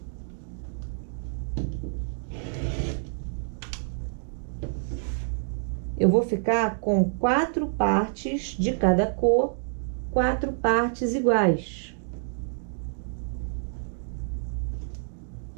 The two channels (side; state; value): left; silent; digital silence